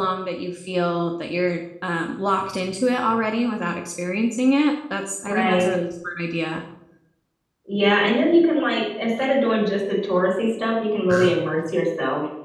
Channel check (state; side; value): identical; both; correlation 1.00